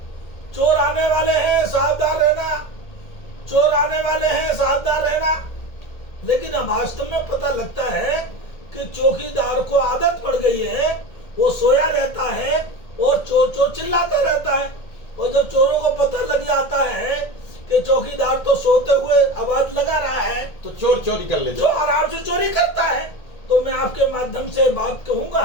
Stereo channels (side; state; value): right; late; 1.8 ms